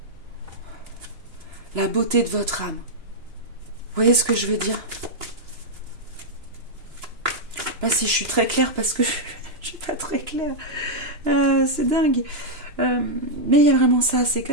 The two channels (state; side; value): late; left; 3.0 ms